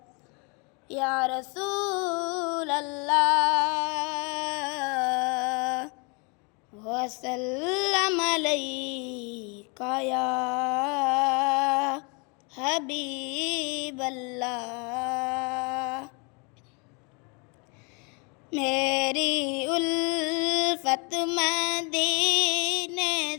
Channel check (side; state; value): right; quieter; 32.5 dB